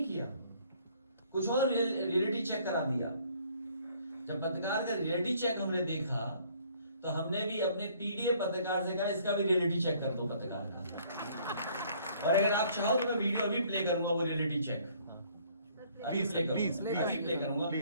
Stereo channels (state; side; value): inverted; both; correlation -0.61